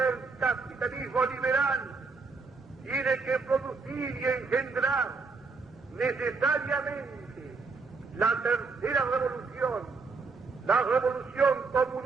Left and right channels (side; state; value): left; quieter; 4.4 dB